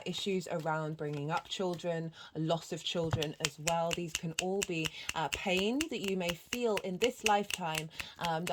issues around bringing up children, loss of children as well. These can all be pain that you may feel in this lifetime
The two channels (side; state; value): both; identical; correlation 1.00